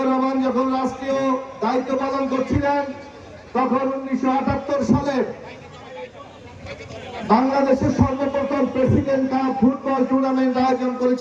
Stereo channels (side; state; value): both; identical; correlation 1.00